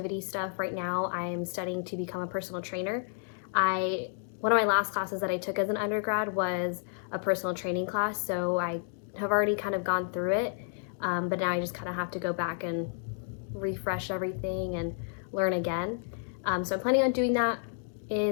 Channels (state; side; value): silent; right; 57 dB below the other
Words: stuff. Right now I'm studying to become a personal trainer. One of my last classes that I took as an undergrad was a personal training class, so I have already kind of gone through it, but now I just kind of have to go back and refresh everything and learn again. So I'm planning on doing that